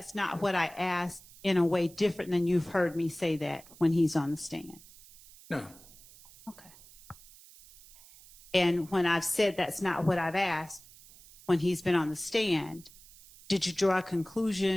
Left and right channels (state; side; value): noise; right; hiss, 22 dB below the sound